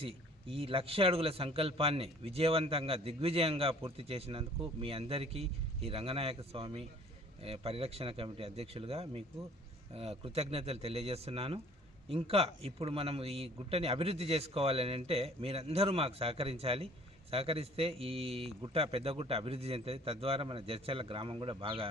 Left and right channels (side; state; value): both; normal; correlation 0.52